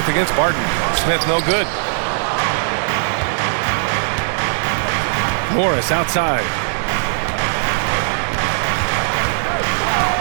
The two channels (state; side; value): silent; left; digital silence